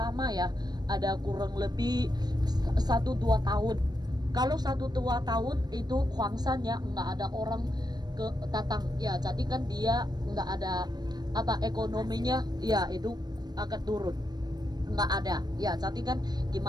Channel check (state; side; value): late; left; 0.19 ms